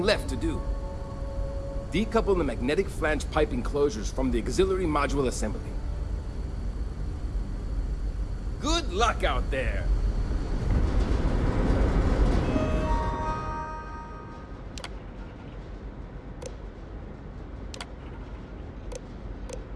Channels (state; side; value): identical; both; correlation 1.00